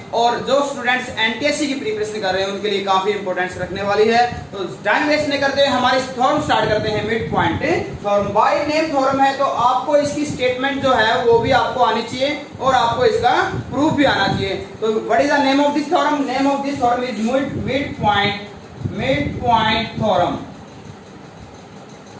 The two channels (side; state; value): both; identical; correlation 1.00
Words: और जो स्टूडेंट्स एनटीएससी की प्रिपरेशन कर रहे हैं उनके लिए काफी इंपॉर्टेंस रखने वाली है। तो टाइम वेस्ट नहीं करते हुए हमारे थ्योरम स्टार्ट करते हैं। Mid point theorem by name theorem है, तो आपको इसकी स्टेटमेंट जो है वो भी आपको आनी चाहिए और आपको इसका प्रूफ भी आना चाहिए। तो what is the name of this theorem? Name of this theorem is mid point theorem.